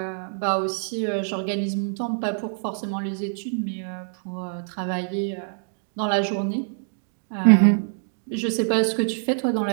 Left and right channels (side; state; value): left; silent; digital silence